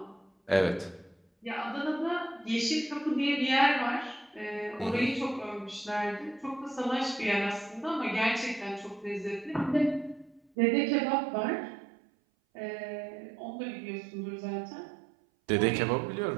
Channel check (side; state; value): left; drops out; at 10.4 s